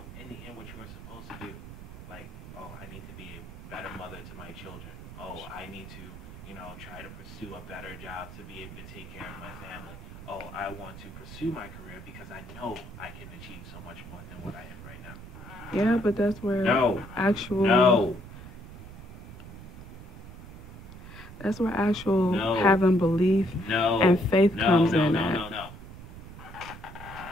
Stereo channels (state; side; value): noise; right; rumble, 14 dB below the sound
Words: in the end what you are supposed to do, like, oh, I need to be a better mother to my children. Oh, I need to, try to pursue a better job to be able to take care of my family. Oh, I want to pursue my career because I know I can achieve so much more than what I am right now. Yeah, but that's where No, actual no, that's where actual no, having belief no, and faith no, comes no, in no, at. no, no.